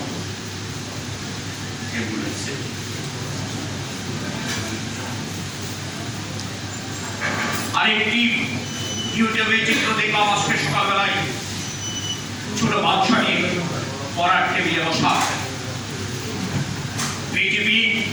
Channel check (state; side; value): identical; both; correlation 1.00